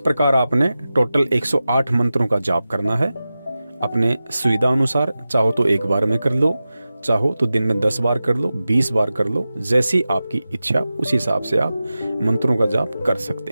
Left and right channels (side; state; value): both; inverted; correlation -0.94